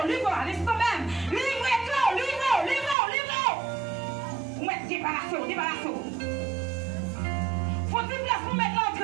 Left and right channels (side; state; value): left; drops out; at 3.0 s